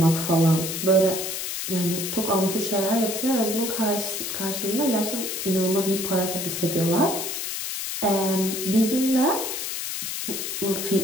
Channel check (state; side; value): noise; left; hiss, 4 dB below the sound